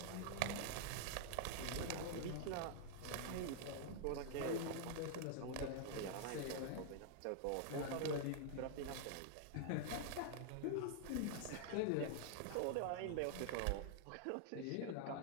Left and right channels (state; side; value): different; both; correlation -0.01